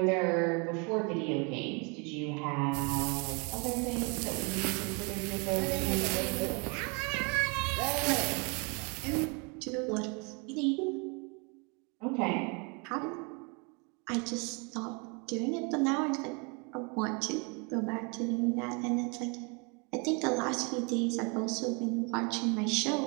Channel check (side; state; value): left; quieter; 32.5 dB